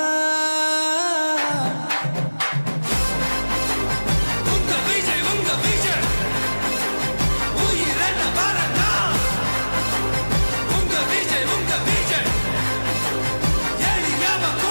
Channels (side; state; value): both; inverted; correlation -1.00